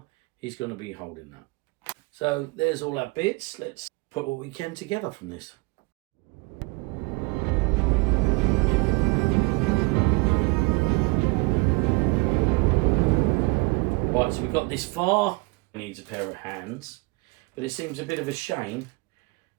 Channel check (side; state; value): left; quieter; 26.3 dB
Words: he's going to be holding that. So there's all our bits. Let's put what we can together from this. Right, so we've got this far. Needs a pair of hands, but it seems a bit of a shame